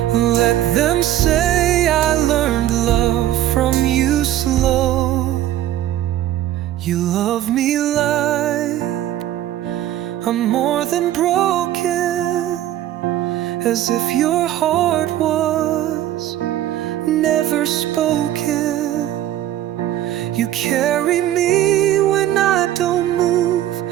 let them say I learned love from you slow. You love me like I'm more than broken, as if your heart was never spoken. You carry me when I don't move,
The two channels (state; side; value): quieter; left; 12.7 dB